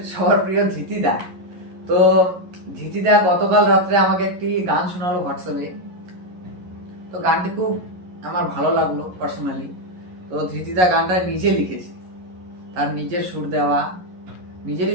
সবার প্রিয় ধৃতিদা। তো ধৃতিদা গতকাল রাত্রে আমাকে একটি গান শোনালো হোয়াটসঅ্যাপে। তো গানটি খুব আমার ভালো লাগলো পার্সোনালি। তো ধৃতিদা গানটা নিজে লিখেছে, তার নিজের সুর দেওয়া,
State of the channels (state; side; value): late; left; 11 ms